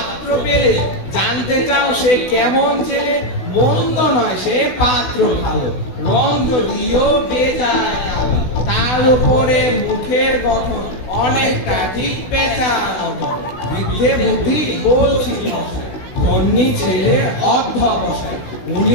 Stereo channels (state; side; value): late; right; 16 ms